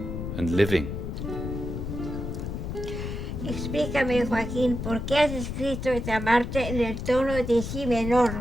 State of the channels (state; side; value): noise; left; rumble, 5 dB below the sound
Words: and living. Explícame, Joaquín, ¿por qué has escrito esta marcha en el tono de si menor?